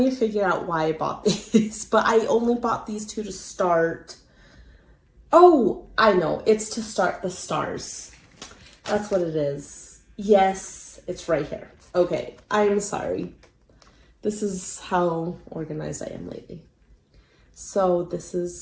to figure out why I bought these, but I only bought these two to start. Oh, I know. It's to start the stars. That's what it is. Yes, it's right here. Okay, I'm sorry. This is how organized I am lately. So this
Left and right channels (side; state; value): both; identical; correlation 1.00